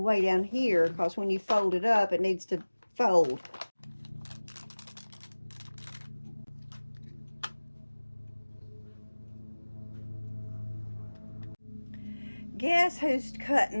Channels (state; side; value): inverted; both; correlation -1.00